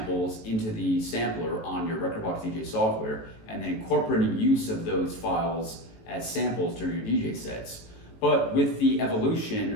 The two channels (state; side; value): late; right; 18 ms